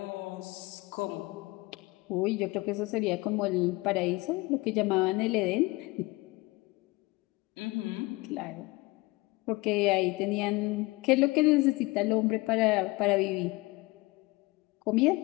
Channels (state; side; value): quieter; right; 22.9 dB